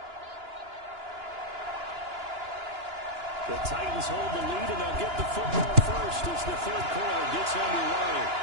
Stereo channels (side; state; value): left; late; 2.9 ms